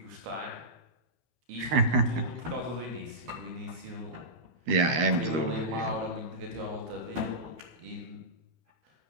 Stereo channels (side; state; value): left; late; 12 ms